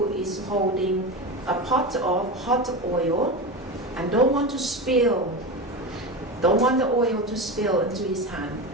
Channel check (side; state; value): both; normal; correlation 0.22